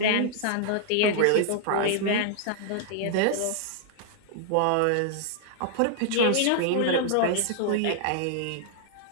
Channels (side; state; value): both; different; correlation -0.01